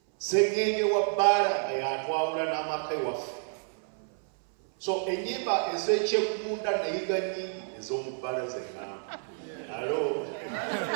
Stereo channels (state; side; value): silent; left; 58 dB below the other